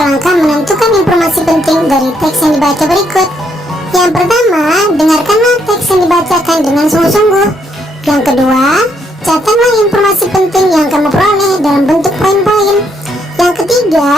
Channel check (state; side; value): normal; both; correlation 0.73